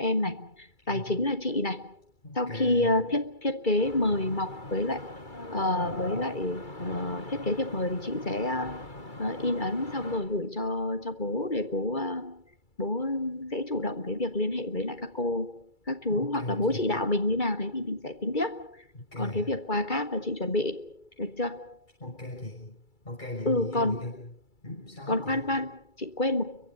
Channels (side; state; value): right; late; 2.3 ms